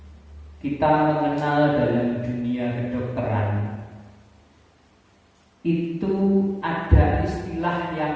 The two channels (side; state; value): both; identical; correlation 1.00